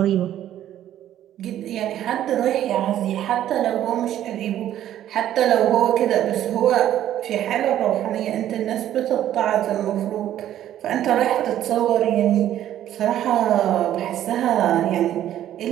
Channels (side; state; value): left; quieter; 11.9 dB